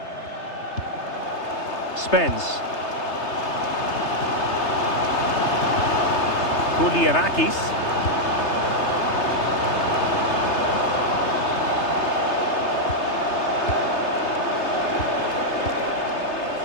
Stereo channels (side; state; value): right; late; 3.3 ms